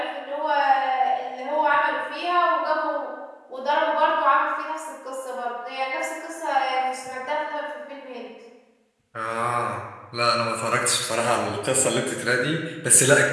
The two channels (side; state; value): both; identical; correlation 1.00